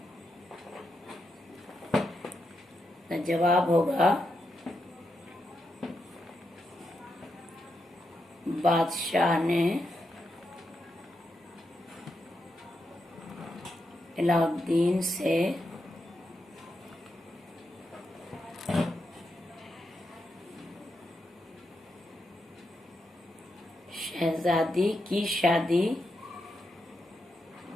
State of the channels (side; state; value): both; normal; correlation 0.84